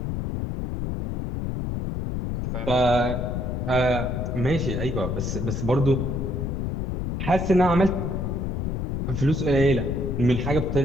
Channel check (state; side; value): noise; left; rumble, 2 dB below the sound